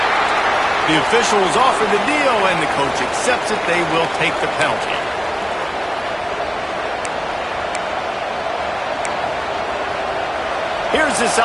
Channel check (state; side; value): identical; both; correlation 1.00